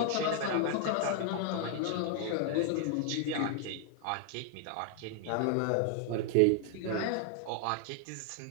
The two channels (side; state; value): both; different; correlation 0.00